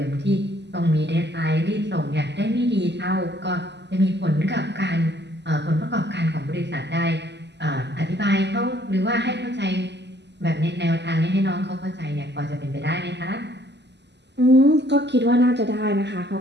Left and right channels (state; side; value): late; left; 0.50 ms